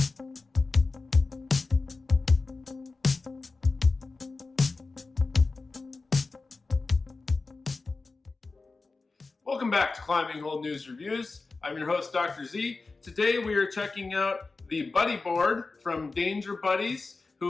back to Climbing Hold News Reviews. I'm your host, Dr. Z. Today we are checking out the Buddy Board from Danger Buddies,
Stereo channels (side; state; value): right; quieter; 3.8 dB